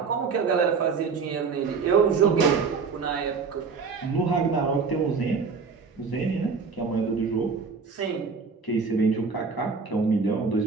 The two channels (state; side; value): quieter; left; 5.1 dB